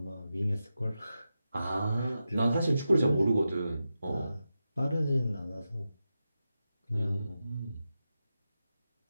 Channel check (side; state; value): both; inverted; correlation -0.90